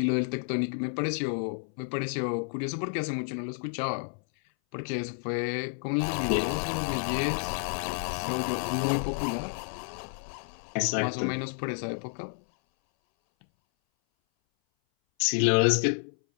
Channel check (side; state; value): right; silent; 58 dB below the other